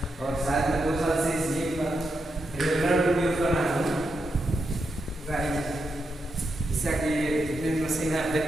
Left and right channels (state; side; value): normal; both; correlation 0.85